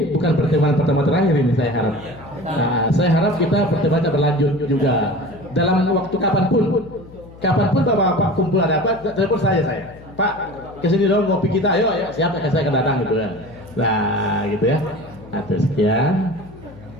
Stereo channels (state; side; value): noise; left; hum, 20 dB below the sound